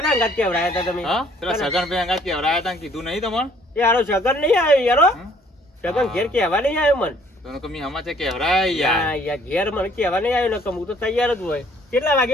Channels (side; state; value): both; normal; correlation 0.60